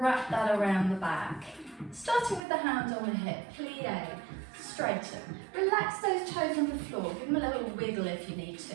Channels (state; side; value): drops out; left; at 2.4 s